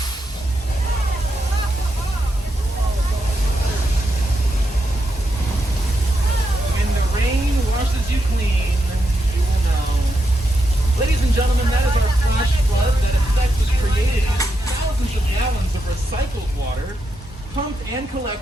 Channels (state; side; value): normal; both; correlation 0.84